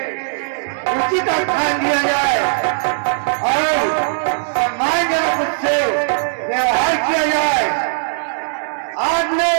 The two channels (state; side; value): silent; left; digital silence